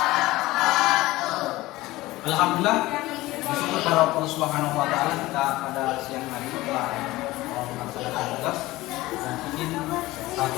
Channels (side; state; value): right; quieter; 18.5 dB